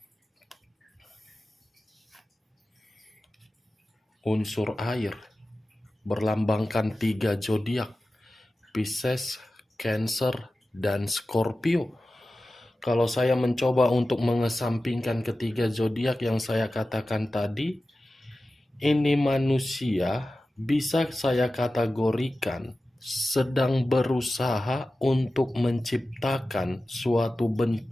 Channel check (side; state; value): both; normal; correlation 0.95